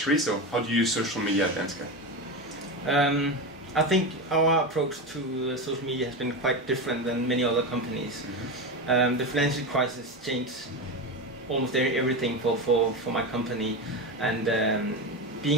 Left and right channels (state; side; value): normal; both; correlation 0.19